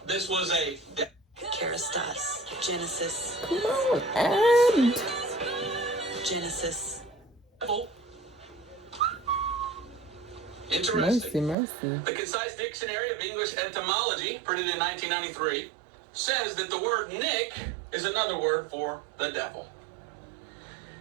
this was a Kerastas. Genesis. Come on, and Genesis. devil. Interesting. mercy. The Concise Dictionary of English Etymology, printed in 1993, says that the word Nick is another word for the devil.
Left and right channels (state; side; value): drops out; left; at 11.6 s